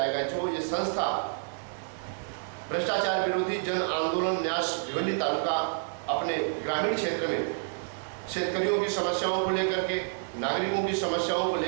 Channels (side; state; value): left; silent; 59 dB below the other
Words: जो ये संस्था भ्रष्टाचार विरोधी जन आंदोलन न्यास भिवंडी तालुका अपने ग्रामीण क्षेत्र में शेतकरियों की समस्याओं को लेकर के, नागरिकों की समस्याओं को